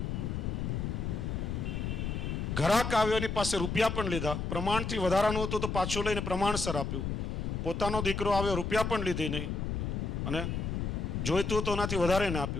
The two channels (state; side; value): noise; left; rumble, 2 dB below the sound